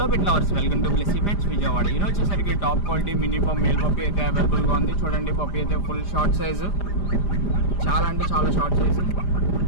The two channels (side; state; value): right; late; 5.0 ms